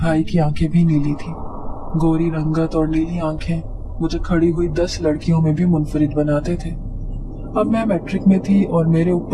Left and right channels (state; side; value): identical; both; correlation 1.00